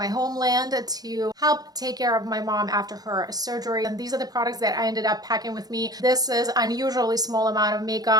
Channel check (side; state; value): left; late; 0.19 ms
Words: homeland to help take care of my mom after her surgery. And these are the products that I ended up packing with me. This is unusually small amount of